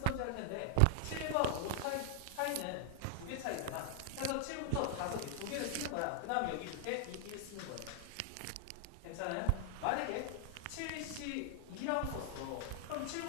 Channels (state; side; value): different; both; correlation 0.00